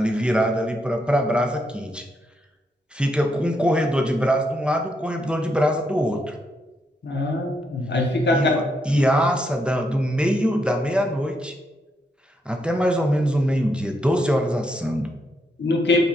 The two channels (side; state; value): both; normal; correlation 0.78